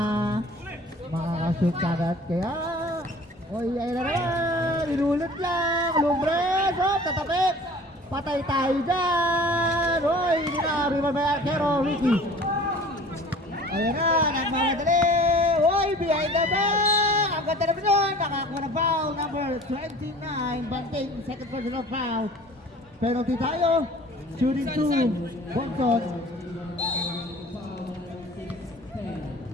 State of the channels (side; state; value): both; normal; correlation 0.46